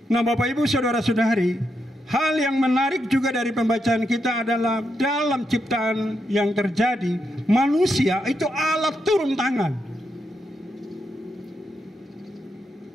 Nah Bapak Ibu Saudara-saudari, hal yang menarik juga dari pembacaan kita adalah dalam ciptaan yang terjadi, manusia itu Allah turun tangan.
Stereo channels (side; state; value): both; normal; correlation 0.83